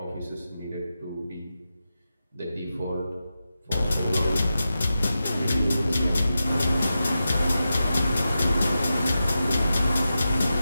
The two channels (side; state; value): both; inverted; correlation -0.91